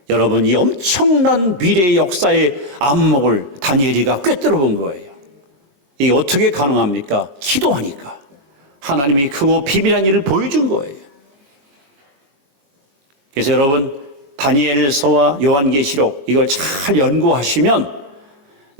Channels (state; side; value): late; left; 22 ms